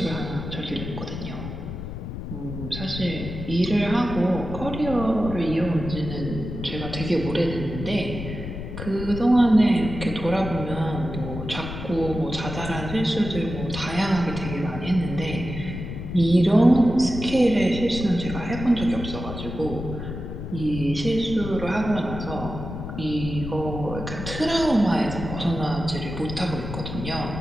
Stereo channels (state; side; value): noise; left; rumble, 7 dB below the sound